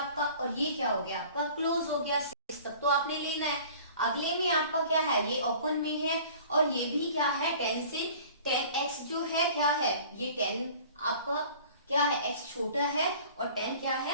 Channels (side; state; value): both; inverted; correlation -0.46